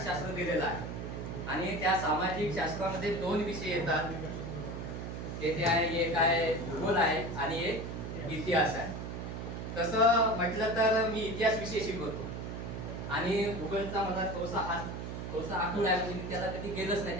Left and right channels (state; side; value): noise; right; hum, 6 dB below the sound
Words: शास्त्र दिलेला आहे आणि त्या सामाजिक शास्त्रामध्ये दोन विषय येतात. ते आहे, एक आहे भूगोल आहे आणि एक इतिहास आहे. तसं म्हटलं तर मी इतिहास विषय शिकवतो आणि भूगोलचा मला थोडासा आठवण आहे, म्हणजे मी त्याला कधी गेलोच नाही,